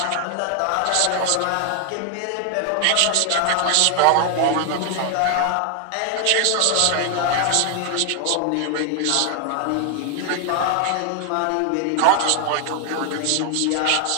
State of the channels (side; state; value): both; different; correlation 0.00